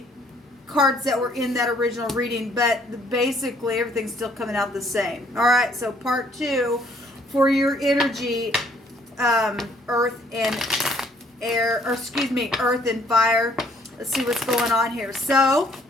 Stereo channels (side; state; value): both; normal; correlation 0.63